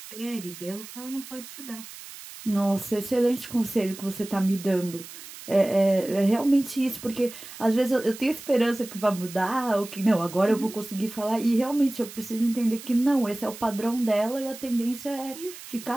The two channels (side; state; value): right; noise; hiss, 15 dB below the sound